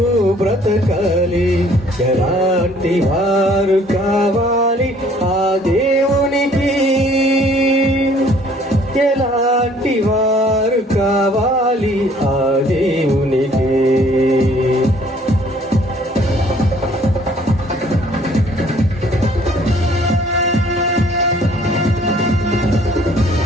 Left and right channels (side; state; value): both; normal; correlation 0.58